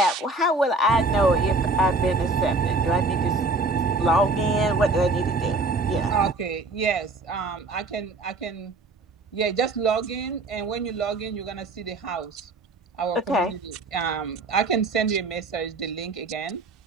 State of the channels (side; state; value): left; quieter; 3.3 dB